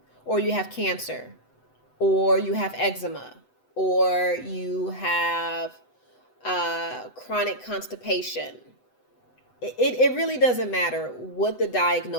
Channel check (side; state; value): right; late; 8.0 ms